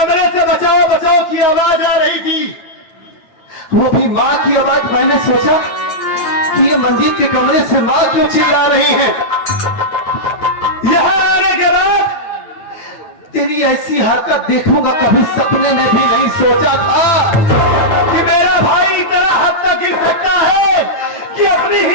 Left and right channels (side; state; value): right; late; 9.1 ms